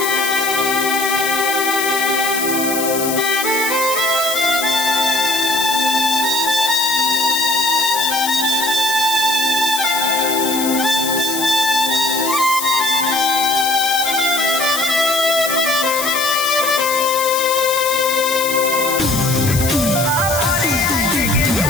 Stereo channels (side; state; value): left; noise; hiss, 4 dB below the sound